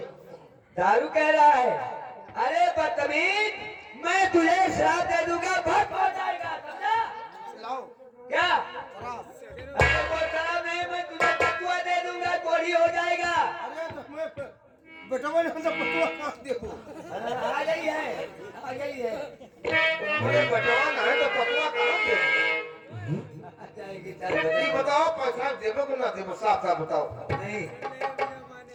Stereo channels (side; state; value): both; identical; correlation 1.00